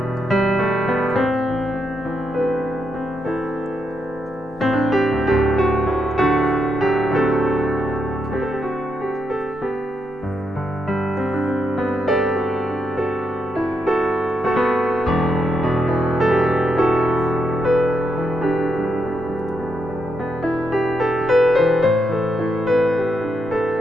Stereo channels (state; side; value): normal; both; correlation 0.81